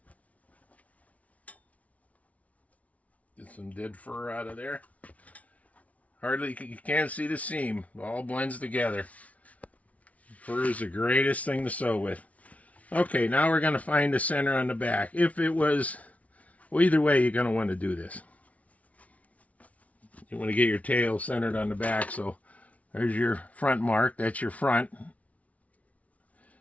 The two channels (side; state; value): right; late; 0.068 ms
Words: Get some dead fur out of there. Hardly, you can't see the seam. It all blends together. Fur is the greatest thing to sew with. Okay, now we're going to find the center on the back. If it was, well, either way, you're going to want to do this. You want to get your tail centered on the back, so there's your front mark. That's your front.